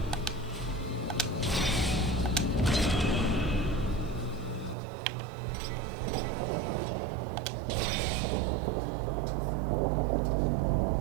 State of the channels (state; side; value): drops out; left; at 4.8 s